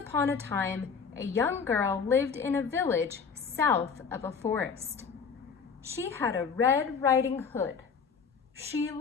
a time, a young girl lived in a village south of a forest. She had a red riding hood. She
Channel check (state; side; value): quieter; right; 5.9 dB